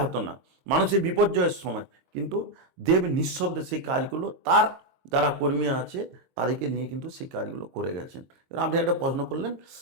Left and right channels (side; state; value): left; late; 22 ms